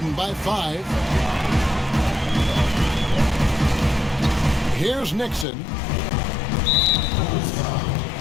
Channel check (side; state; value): right; drops out; at 5.5 s